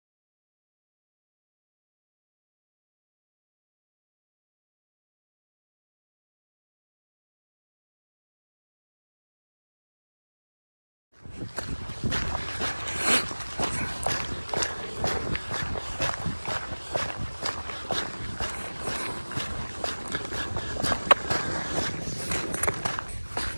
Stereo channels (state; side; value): inverted; both; correlation -1.00